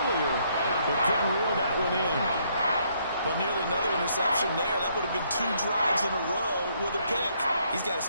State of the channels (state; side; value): inverted; both; correlation -0.70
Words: but couldn't reel that one in. But nearly another interception there. That would have been 2 drives in a row with a pick. He's got to